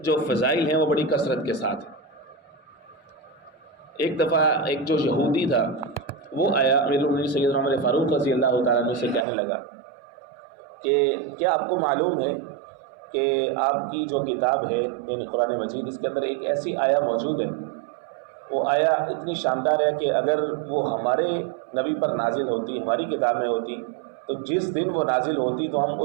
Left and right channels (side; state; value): left; drops out; at 9.2 s